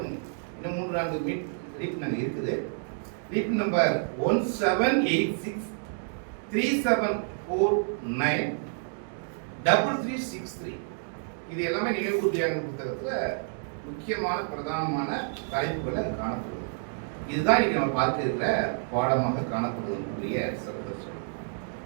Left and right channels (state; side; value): silent; left; digital silence